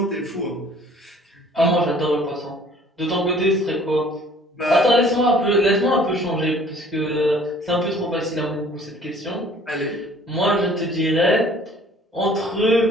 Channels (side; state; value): both; normal; correlation 0.54